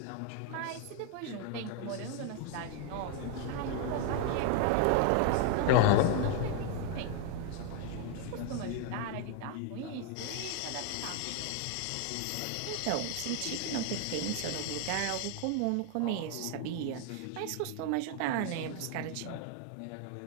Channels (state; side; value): different; both; correlation 0.00